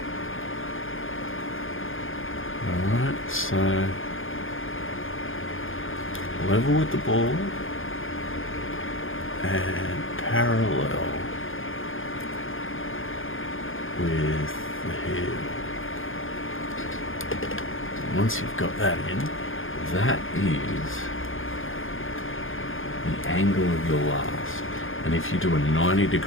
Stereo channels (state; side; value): late; right; 0.59 ms